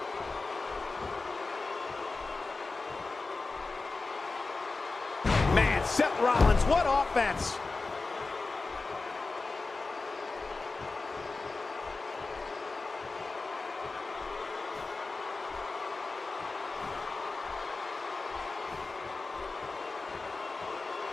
Man, Seth Rollins, what offense!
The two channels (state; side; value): quieter; right; 3.8 dB